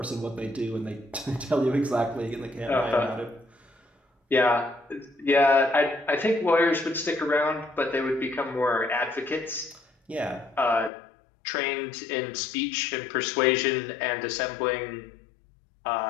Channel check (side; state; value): right; drops out; at 10.9 s